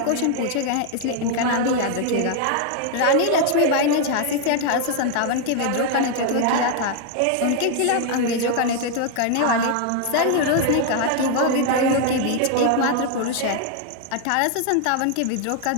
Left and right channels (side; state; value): both; different; correlation 0.00